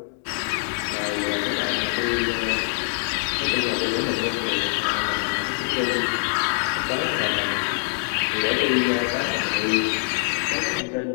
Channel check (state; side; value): silent; right; digital silence